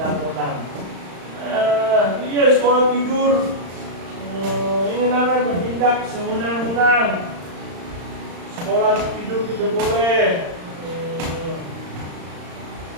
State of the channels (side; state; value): left; late; 35 ms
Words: Iya, sekolah tidur. Ini namanya bertindak sewenang-wenang. Sekolah tidur tidak boleh.